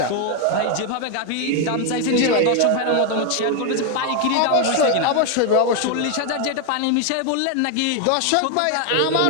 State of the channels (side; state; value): both; different; correlation 0.01